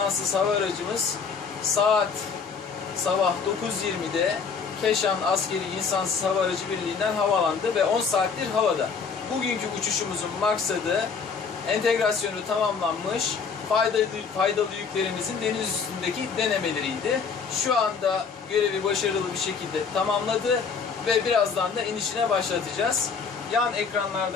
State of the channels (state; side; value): quieter; right; 5.7 dB